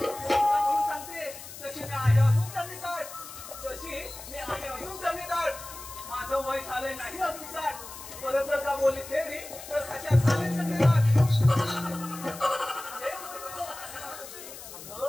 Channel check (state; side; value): noise; left; hiss, 13 dB below the sound